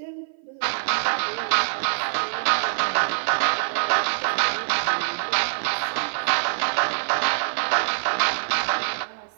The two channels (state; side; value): silent; left; 56 dB below the other